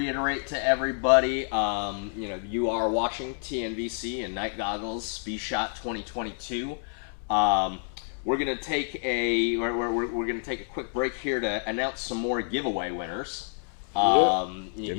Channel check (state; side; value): silent; right; 59 dB below the other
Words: to everybody, you are watching TNVC and Night Goggles vSHOTT 2022. We're gonna take a quick break here to announce some more giveaway winners.